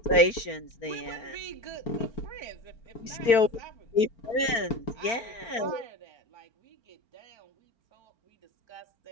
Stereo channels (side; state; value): right; late; 4.4 ms